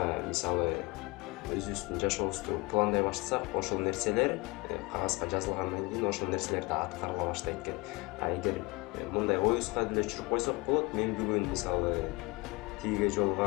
мисалы өзүбүздүн жашообузду пландай баштасак, ошол нерселер кагазга жазылгандан кийин ошол нерселер да аткарыла баштайт экен. А эгер мындай оюбузга деле түшүрүп койсок болот, мен бүгүн мисалы тиге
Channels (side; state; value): right; quieter; 24.7 dB